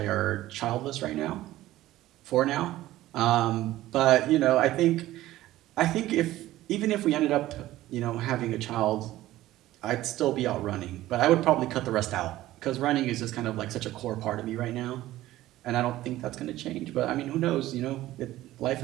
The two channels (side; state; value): left; quieter; 15.5 dB